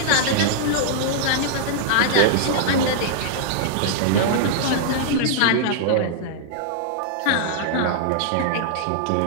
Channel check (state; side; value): different; both; correlation -0.01